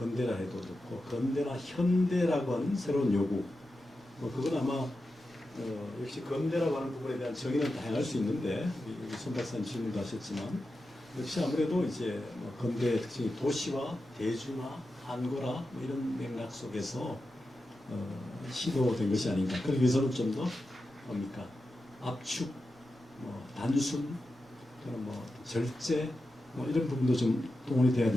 해도 좋고 근대나 현대라고 하는 새로운 요구 그건 아마 역시 근대라고 하는 부분에 대한 정의는 다양할 수 있는데 우리 손 박사님 질문도 하셨지만 역시 아무래도 이제 뭐 근대의 특징이 도시화, 대중화, 한거라 뭐 이런 맥락 속에서 시도된 것이 아닌가. 그러기 위해서는 좀 더 뭡니까 압축, 뭐 단순, 그런 뭐 절제 뭐 이런 부분도 좀 동원이 돼야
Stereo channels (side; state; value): both; normal; correlation 0.91